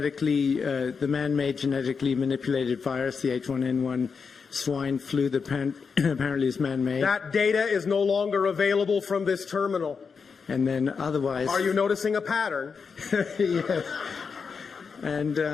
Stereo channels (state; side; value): quieter; right; 5.6 dB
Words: man-made genetically manipulated virus, the H1N1 swine flu that apparently is man-made? That data is no longer available from this terminal. And then otherwise... Are you noticing a pattern? Yes.